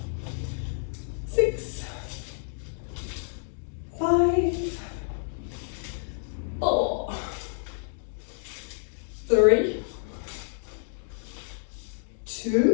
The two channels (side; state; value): right; silent; digital silence